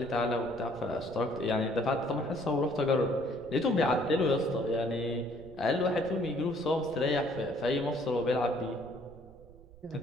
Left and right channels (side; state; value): right; noise; rumble, 21 dB below the sound